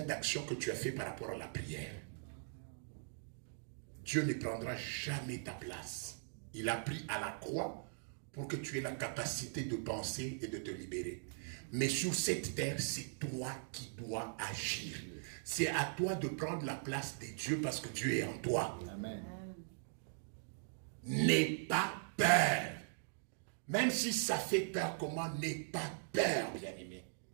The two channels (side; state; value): left; silent; digital silence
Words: d'actions que tu as fait par rapport à la prière. Dieu ne prendra jamais ta place. Il a pris à la croix pour que tu aies la capacité de penser et de te libérer. Mais sur cette terre, c'est toi qui dois agir. C'est à toi de prendre la place de Dieu parce que Dieu est en toi. Amen. N'aie pas peur. Même si ça fait peur, comment n'aie pas peur, bien-aimé.